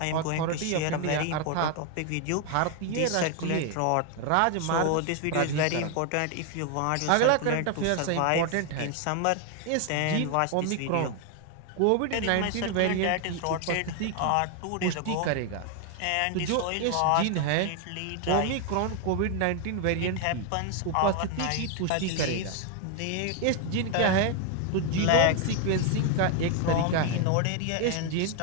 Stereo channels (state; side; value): different; both; correlation 0.01